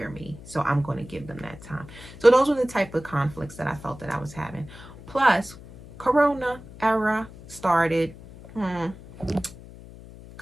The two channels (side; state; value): left; noise; hum, 17 dB below the sound